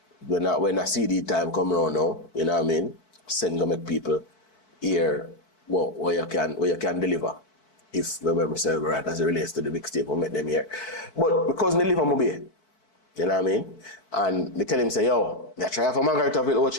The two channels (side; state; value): right; late; 4.6 ms